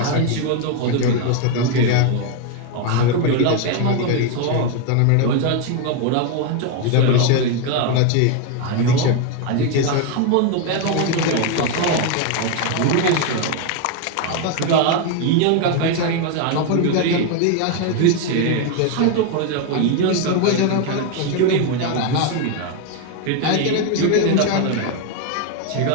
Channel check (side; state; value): both; different; correlation 0.01